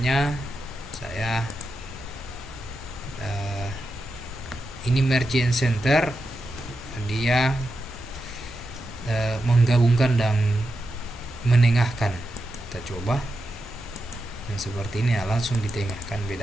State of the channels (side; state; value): both; normal; correlation 0.88